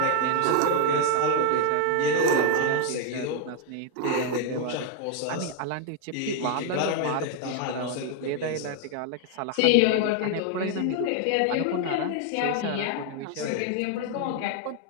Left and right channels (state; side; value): different; both; correlation 0.00